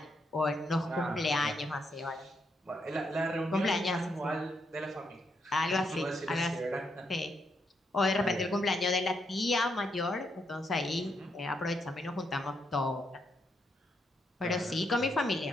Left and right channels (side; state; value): both; normal; correlation 0.78